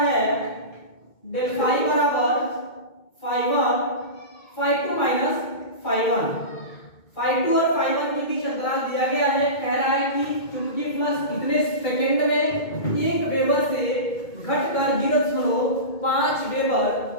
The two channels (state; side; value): late; right; 2.2 ms